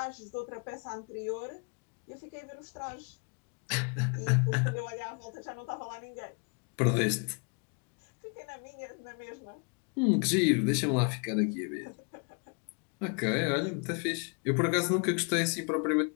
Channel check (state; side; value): quieter; right; 35.7 dB